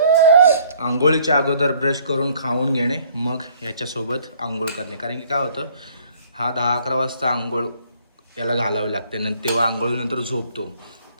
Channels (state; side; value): inverted; both; correlation -0.60